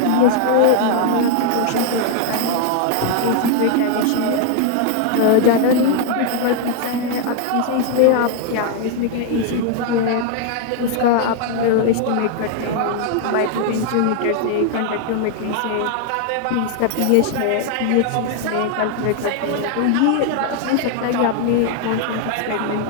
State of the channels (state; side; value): different; both; correlation 0.00